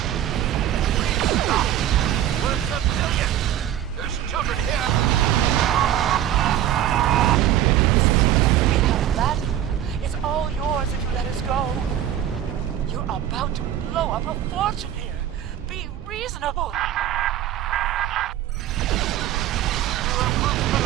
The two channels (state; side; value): quieter; left; 11.4 dB